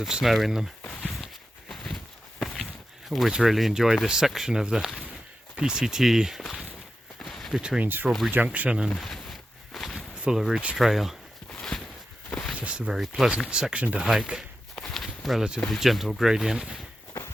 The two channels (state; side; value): normal; both; correlation 0.90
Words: snow in them. Always really enjoy this section of the PCT between Strawberry Junction and Fuller Ridge Trail. Just a very pleasant section to hike, relatively gentle gradient,